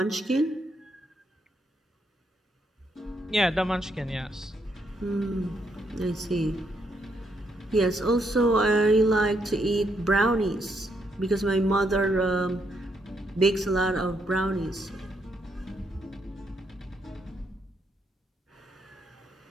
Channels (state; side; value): normal; both; correlation 0.76